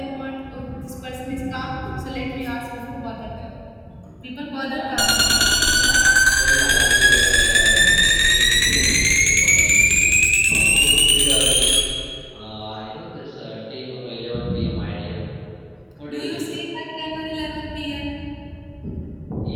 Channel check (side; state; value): both; identical; correlation 1.00